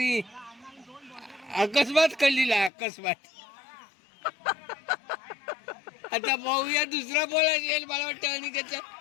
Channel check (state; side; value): drops out; right; at 2.7 s